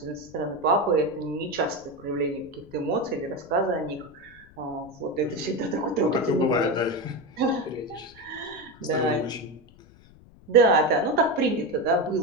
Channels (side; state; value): left; noise; rumble, 24 dB below the sound